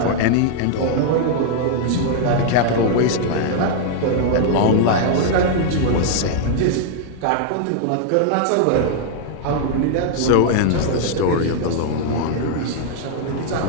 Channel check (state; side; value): different; both; correlation 0.00